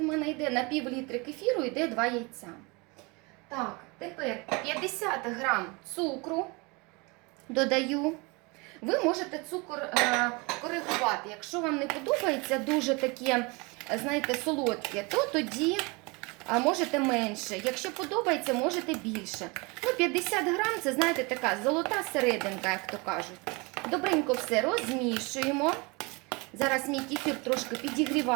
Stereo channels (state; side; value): quieter; left; 27.7 dB